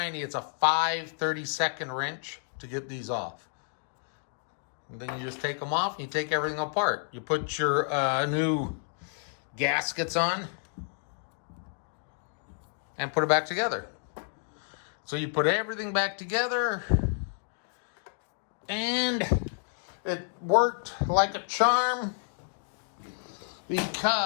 it's a 5/32 wrench to get these off. And then you just take them off and you take everything apart. You put your new gaskets on and put it back together. So you put everything back together, and it worked like a charm,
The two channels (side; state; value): right; silent; digital silence